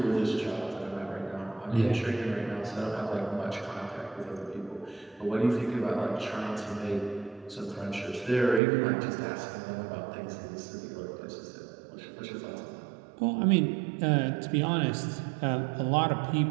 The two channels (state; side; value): drops out; left; at 8.6 s